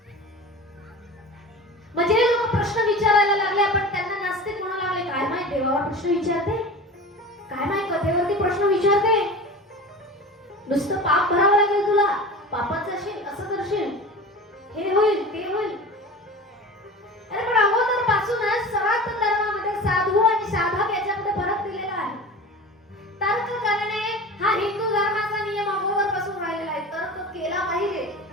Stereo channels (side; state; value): both; normal; correlation 0.34